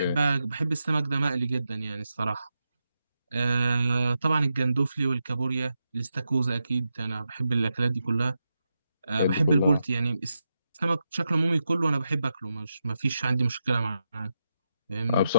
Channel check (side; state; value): both; inverted; correlation -0.87